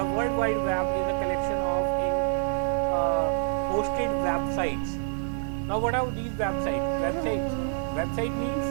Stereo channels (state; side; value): silent; left; 56 dB below the other